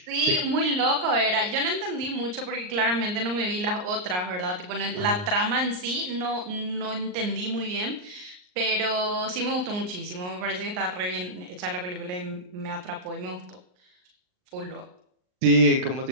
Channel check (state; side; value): late; left; 39 ms